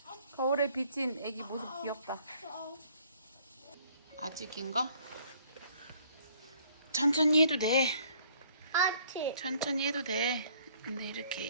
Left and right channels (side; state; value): both; inverted; correlation -0.60